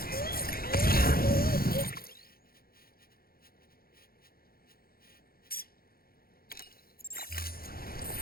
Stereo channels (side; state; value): right; late; 0.44 ms